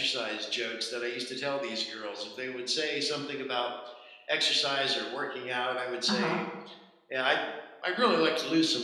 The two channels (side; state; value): both; identical; correlation 1.00